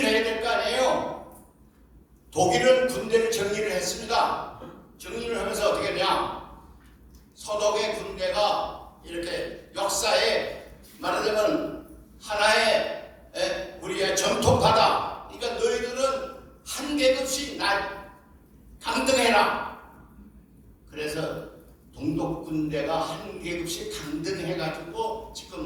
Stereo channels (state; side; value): identical; both; correlation 1.00